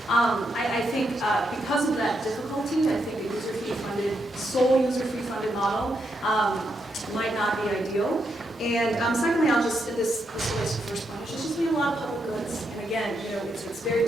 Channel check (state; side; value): normal; both; correlation 0.81